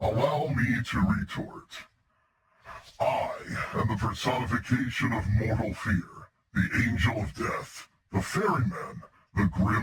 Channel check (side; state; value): both; identical; correlation 1.00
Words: me to retort. I am the personification of mortal fear, the angel of death, the ferryman, the